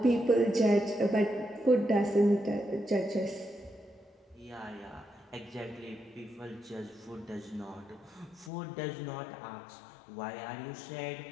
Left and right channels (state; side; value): drops out; right; at 8.5 s